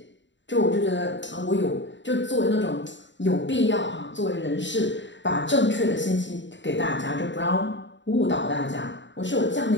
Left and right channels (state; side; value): late; right; 0.53 ms